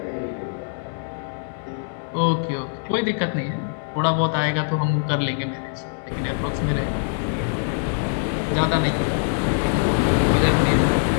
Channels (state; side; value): silent; right; 57 dB below the other